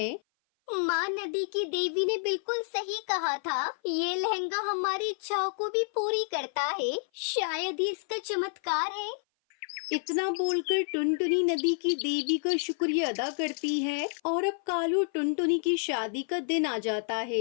माँ, नदी की देवी ने बिल्कुल सही कहा था, ये लहंगा हमारी इच्छाओं को भी पूरी करता है। शायद ही इसका चमत्कार है। इतना बोलकर टुनटुनी नदी की देवी का शुक्रिया अदा करती है और अब कालू टुनटुनी की शादी का दिन आ जाता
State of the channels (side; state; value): right; silent; 56 dB below the other